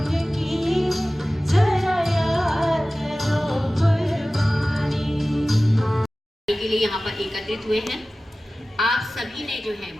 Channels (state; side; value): normal; both; correlation 0.97